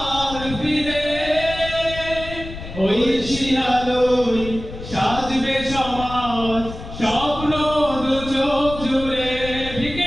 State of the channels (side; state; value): left; noise; rumble, 11 dB below the sound